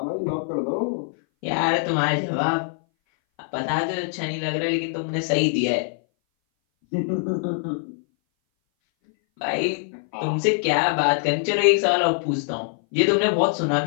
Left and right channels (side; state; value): right; silent; 60 dB below the other